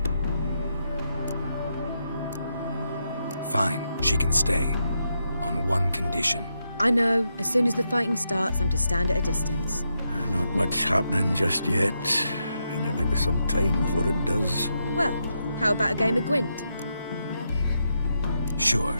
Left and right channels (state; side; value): inverted; both; correlation -0.83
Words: Fine, she can stay. On one condition. I know, as soon as the fighting starts, I'm to stand at a distance. Not much happening just yet. And there may be some time before it does. Well, how about a game of Gwent? Sure,